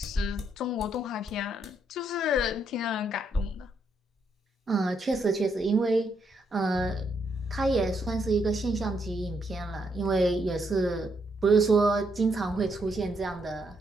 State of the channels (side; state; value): both; normal; correlation 0.76